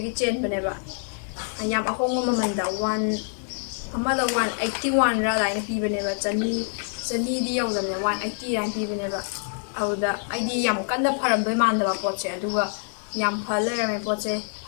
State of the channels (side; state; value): right; silent; 61 dB below the other